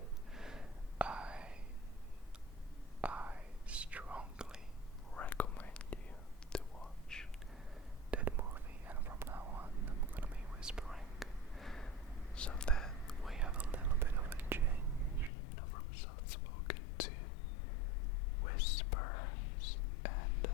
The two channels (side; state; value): right; drops out; at 15.3 s